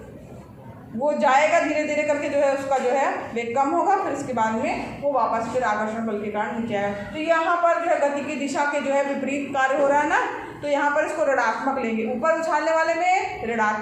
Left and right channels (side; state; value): both; identical; correlation 1.00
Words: वो जाएगा धीरे धीरे करके, जो है उसका जो है वेग कम होगा, फिर इसके बाद में वो वापस फिर आकर्षण बल के कारण नीचे आएगा। तो यहाँ पर जो है गति की दिशा के जो है विपरीत कार्य हो रहा है ना, तो यहाँ पर इसको ऋणात्मक लेंगे। ऊपर उछालने वाले में